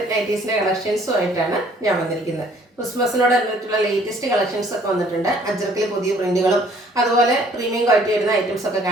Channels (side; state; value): both; normal; correlation 0.59